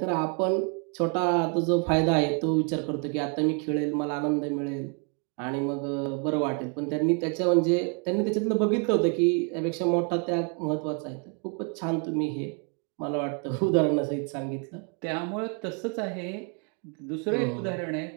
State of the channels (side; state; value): left; quieter; 36.8 dB